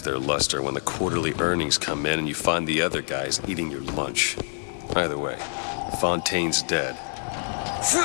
their luster when the quarterly earnings come in and you find the other guys eating your lunch. Either way, Fontaine's dead.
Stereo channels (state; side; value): silent; right; digital silence